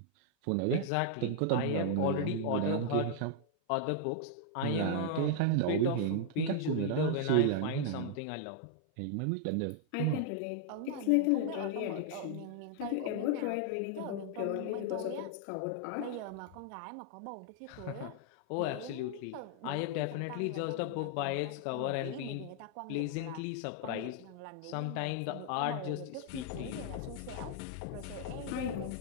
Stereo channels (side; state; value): both; different; correlation 0.00